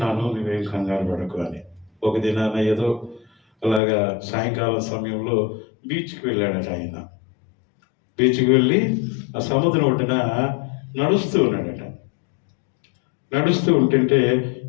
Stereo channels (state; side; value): drops out; right; at 3.8 s